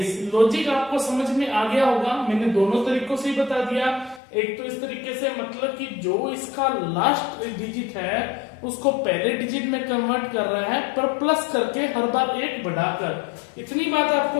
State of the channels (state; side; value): drops out; right; at 4.2 s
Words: लॉजिक आपको समझ में आ गया होगा, मैंने दोनों तरीकों से ही बता दिया। एक तो इस तरीके से, मतलब कि जो इसका लास्ट डिजिट है उसको पहले डिजिट में कन्वर्ट कर रहा है, पर प्लस करके हर बार 1 बढ़ाकर। इतनी बात